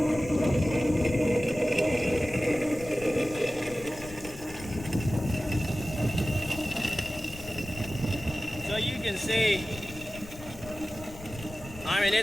So you can see, I mean,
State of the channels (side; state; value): left; noise; rumble, 16 dB below the sound